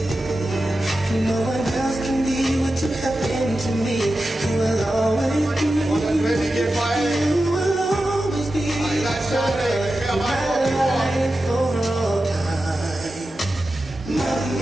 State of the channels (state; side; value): normal; both; correlation 0.92